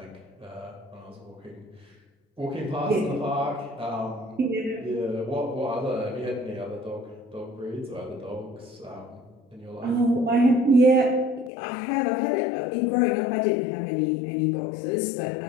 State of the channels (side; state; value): right; drops out; at 11.5 s